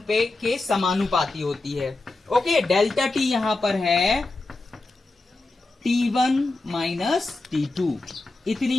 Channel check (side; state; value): right; quieter; 3.2 dB